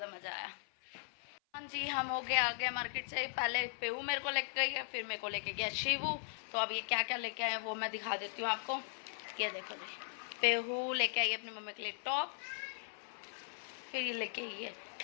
मजा आया। हाँ जी, हम हो गए आ गए मार्केट से। पहले पेऊ मेरे को लेके गई है, फिर मेरे को लेके गया शिवू। तो अब ये क्या क्या लेके आए वो मैं दिखा देती हूँ आपको। ये देखो जी, पेहू लेके आई अपनी मम्मी के लिए टॉप, फिर ये लेके आई है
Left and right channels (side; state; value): right; silent; 52 dB below the other